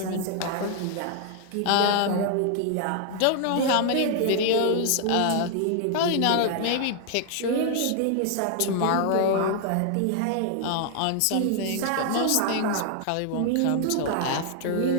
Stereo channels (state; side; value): different; both; correlation 0.00